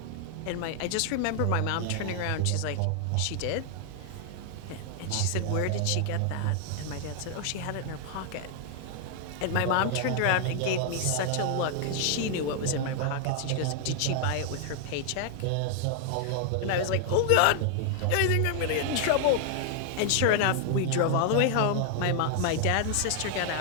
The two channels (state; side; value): different; both; correlation 0.00